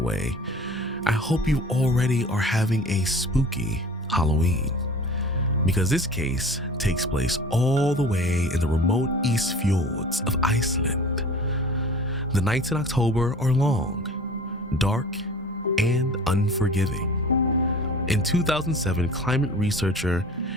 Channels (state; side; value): normal; both; correlation 0.42